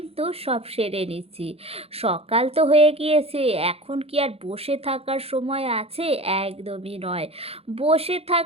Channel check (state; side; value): late; left; 0.29 ms